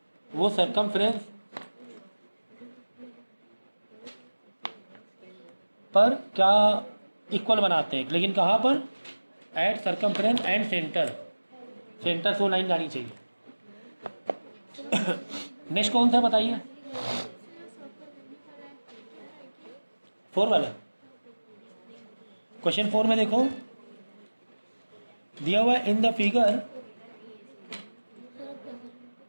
वो सरकमफ्रेंस पर क्या इक्वल बनाते हैं, लेकिन कहाँ पर, एट सरकमफ्रेंस एंड सेंटर से वो लाइन जानी चाहिए। नेक्स्ट कौन सा बताइए, 4 वाला। क्वेश्चन 4 में देखो दिया हुआ इन द फिगर,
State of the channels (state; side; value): inverted; both; correlation -1.00